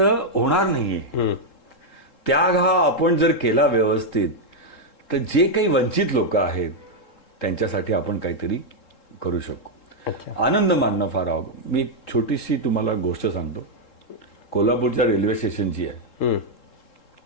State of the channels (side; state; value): right; late; 3.7 ms